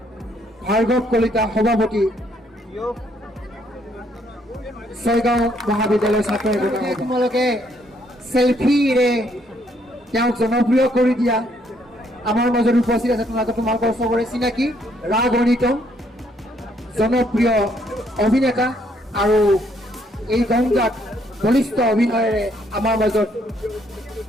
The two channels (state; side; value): normal; both; correlation 0.69